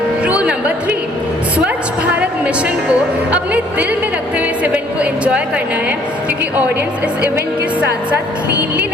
रूल नंबर 3, स्वच्छ भारत मिशन को अपने दिल में रखते हुए इस इवेंट को एंजॉय करना है, क्योंकि ऑडियंस इस इवेंट के साथ साथ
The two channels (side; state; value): both; normal; correlation 0.60